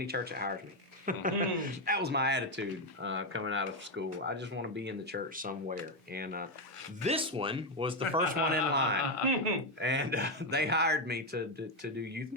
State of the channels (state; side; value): normal; both; correlation 0.06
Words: church that hires me. That was my attitude coming out of school. I just want to be in the church somewhere. And this one was the first one in line. And they hired me to do youth